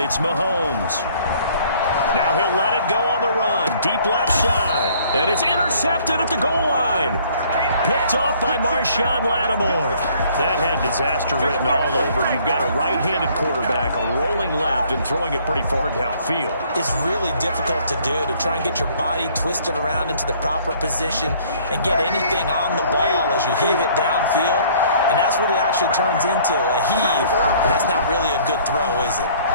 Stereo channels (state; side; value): inverted; both; correlation -0.58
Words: Mahomes. Now he'll let it go on the run. Deep left side. And it's intercepted at the goal line. Picked off by Marshawn Lattimore. That had disaster written all over. You've got a right-handed quarterback rolling left and throwing it pretty far downfield. It's really difficult to do, to try and get your body twisted around into the proper position and get anything on the ball as you heave it downfield. And that's what it actually turns into, a heave. And that's not really a good throw, is it?